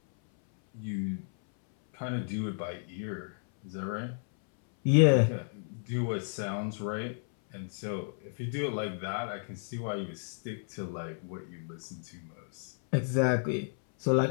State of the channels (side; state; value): right; silent; 56 dB below the other